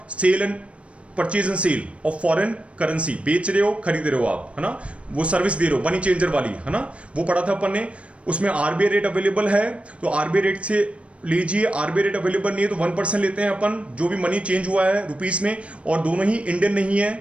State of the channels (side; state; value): left; late; 0.061 ms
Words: sale and purchase and sale of foreign currency, बेच रहे हो खरीद रहे हो आप, है ना, वो सर्विस दे रहे हो मनी चेंजर वाली, है ना, वो पढ़ा था अपन ने। उसमें आरबीआई रेट अवेलेबल है तो आरबीआई रेट से लीजिए, आरबीआई रेट अवेलेबल नहीं है तो 1% लेते हैं अपन, जो भी मनी चेंज हुआ है रुपीस में, और दोनों ही इंडियन नहीं